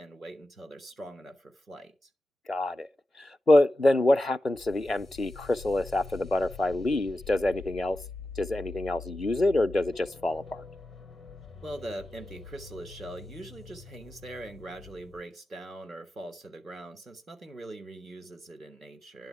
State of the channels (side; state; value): both; normal; correlation 0.91